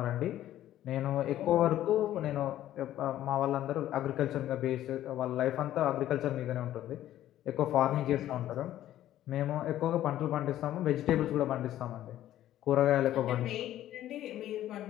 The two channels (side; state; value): right; quieter; 12.9 dB